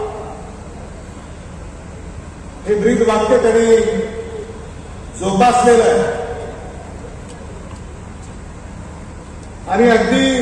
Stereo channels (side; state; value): both; identical; correlation 1.00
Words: हे ब्रीद वाक्य त्यांनी जोपासलेलं आहे आणि अगदी